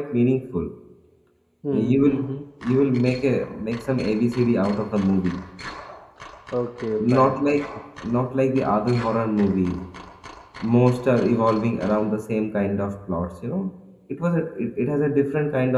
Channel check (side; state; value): both; identical; correlation 1.00